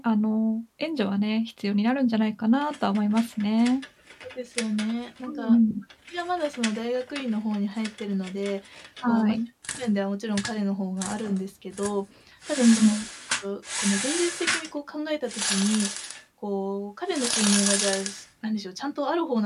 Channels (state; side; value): identical; both; correlation 1.00